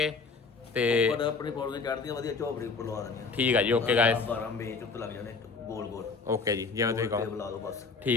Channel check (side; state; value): right; quieter; 4.6 dB